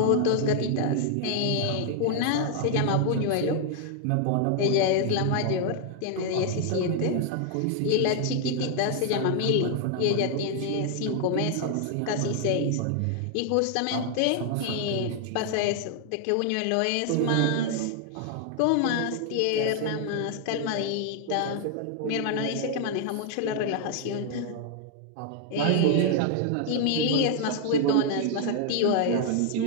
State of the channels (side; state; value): both; different; correlation 0.00